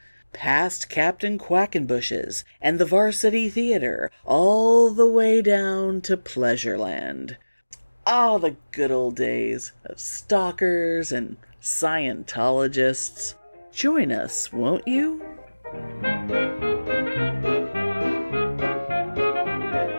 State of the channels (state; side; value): inverted; both; correlation -1.00